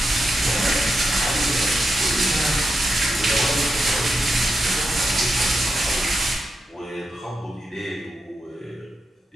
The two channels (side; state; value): both; normal; correlation 0.86